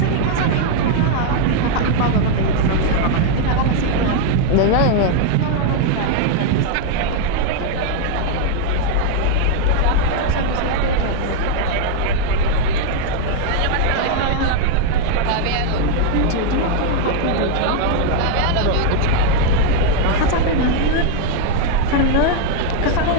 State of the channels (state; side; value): different; both; correlation 0.00